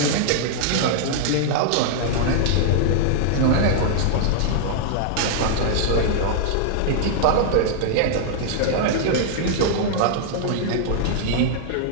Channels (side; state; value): both; different; correlation -0.01